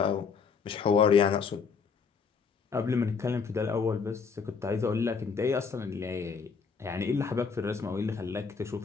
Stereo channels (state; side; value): quieter; right; 5.6 dB